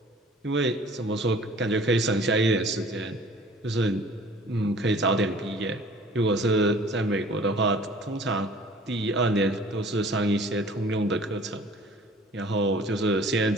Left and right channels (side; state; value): both; normal; correlation 0.49